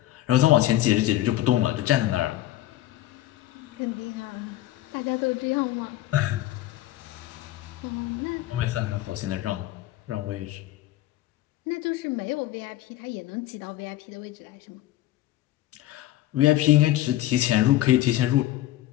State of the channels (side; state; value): right; quieter; 14.6 dB